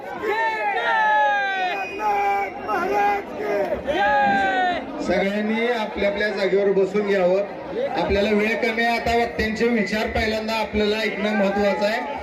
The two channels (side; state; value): both; identical; correlation 1.00